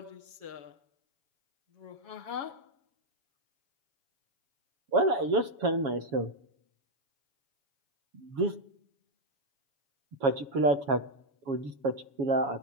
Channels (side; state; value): left; late; 7.2 ms